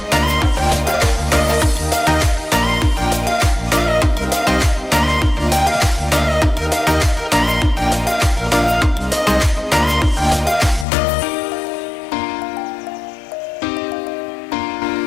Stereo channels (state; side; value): drops out; right; at 10.9 s